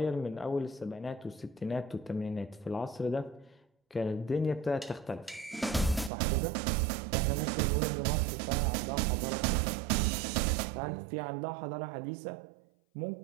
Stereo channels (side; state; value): left; drops out; at 6.1 s